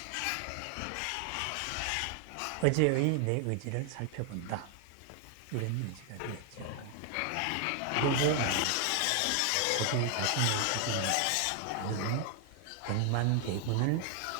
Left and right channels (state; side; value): different; both; correlation 0.00